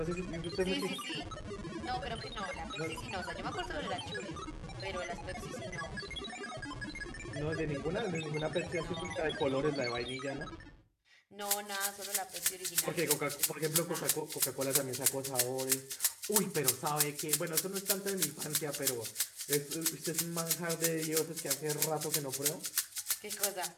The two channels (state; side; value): identical; both; correlation 1.00